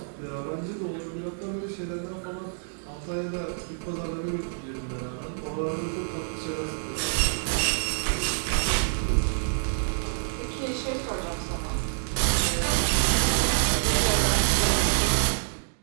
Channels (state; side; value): silent; left; digital silence